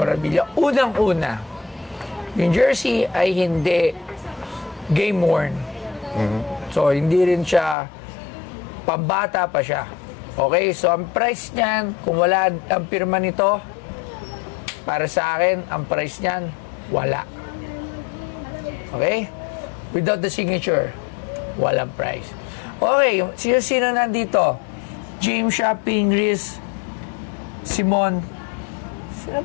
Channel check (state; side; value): drops out; right; at 7.8 s